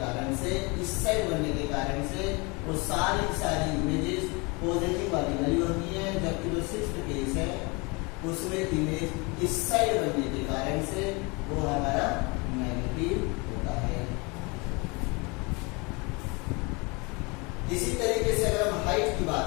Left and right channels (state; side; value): quieter; right; 28.2 dB